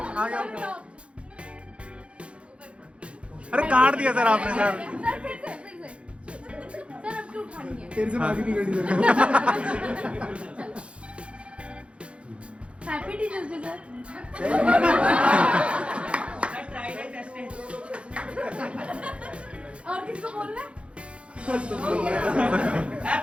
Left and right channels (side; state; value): left; late; 0.060 ms